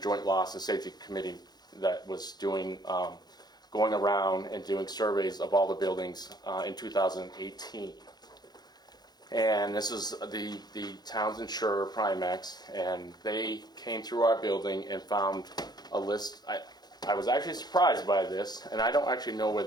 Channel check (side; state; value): right; late; 0.20 ms